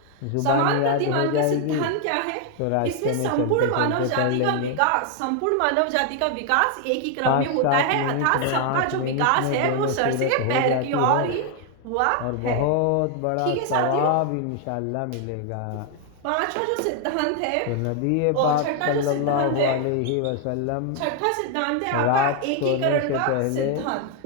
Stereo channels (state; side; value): different; both; correlation 0.00